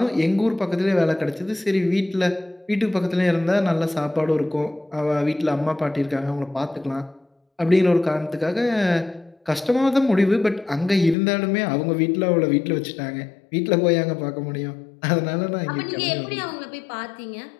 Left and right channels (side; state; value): right; drops out; at 11.2 s